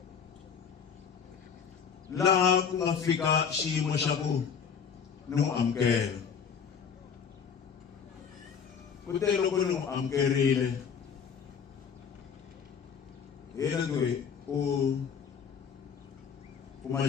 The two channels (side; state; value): right; quieter; 6.9 dB